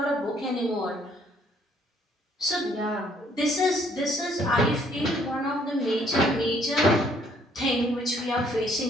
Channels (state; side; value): normal; both; correlation 0.64